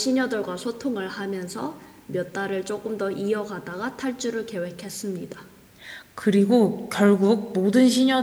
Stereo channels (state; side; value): identical; both; correlation 1.00